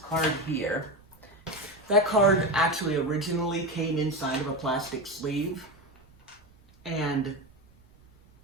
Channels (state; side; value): noise; right; rumble, 28 dB below the sound